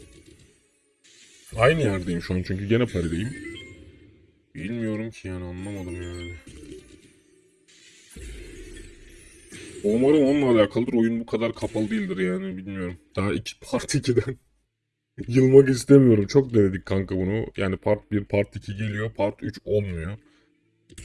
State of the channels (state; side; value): identical; both; correlation 1.00